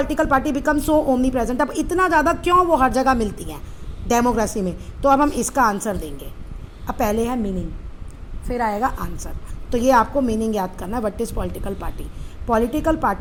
party become so omnipresent. अब इतना ज़्यादा क्यों वो हर जगह मिलती हैं डेमोक्रेसी में, तो अब हम इसका आंसर देंगे। अब पहले है मीनिंग, फिर आएगा आंसर। तो ये आपको मीनिंग याद करना है, what is political party. Political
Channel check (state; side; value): identical; both; correlation 1.00